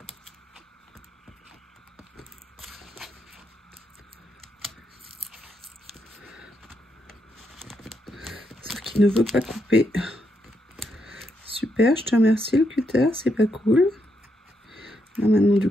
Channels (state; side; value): normal; both; correlation 0.80